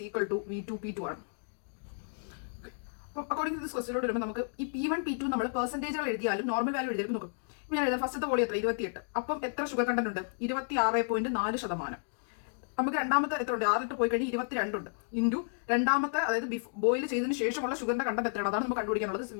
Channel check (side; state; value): right; silent; digital silence